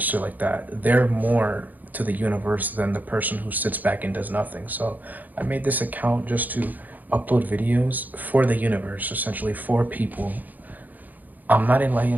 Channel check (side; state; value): left; late; 0.083 ms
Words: like that, they're more to the universe than the person who sits back and does nothing. So I made this account just to upload videos for the universe, essentially for people. I'm not